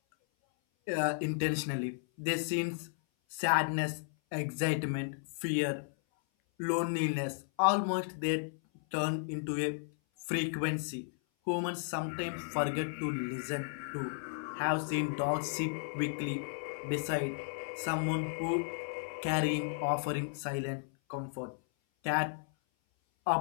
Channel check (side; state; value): right; silent; 55 dB below the other